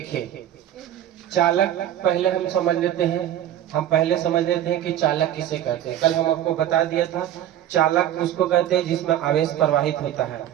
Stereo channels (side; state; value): left; quieter; 11.6 dB